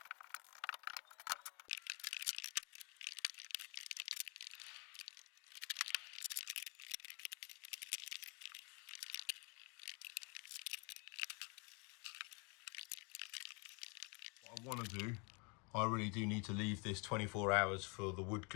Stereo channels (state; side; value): quieter; right; 32.4 dB